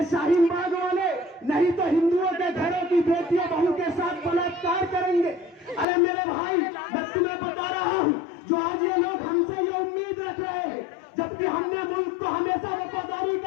शाहीन बाग वाले नहीं तो हिंदुओं के घरों की बेटियों बहू के साथ बलात्कार करेंगे। अरे मेरे भाई, मैं तुम्हें बता रहा हूं, जो आज ये लोग हमसे ये उम्मीद रख रहे हैं, जबकि हमने मुल्क को हमेशा वफादारी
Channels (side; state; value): right; drops out; at 5.9 s